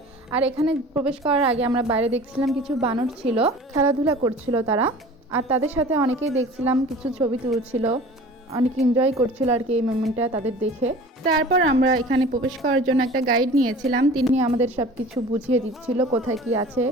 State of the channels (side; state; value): both; normal; correlation 0.42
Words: আর এখানে প্রবেশ করার আগে আমরা বাইরে দেখছিলাম কিছু বানর ছিল, খেলাধুলা করছিল তারা। আর তাদের সাথে অনেকেই দেখছিলাম কিছু ছবি তুলছিল, অনেক এনজয় করছিল আর কি এই মোমেন্টটা তাদের দেখে। তারপর আমরা এখানে প্রবেশ করার জন্য একটা গাইড নিয়েছিলাম, তিনি আমাদের সব কিছু বুঝিয়ে দিচ্ছিল, কোথায় কি আছে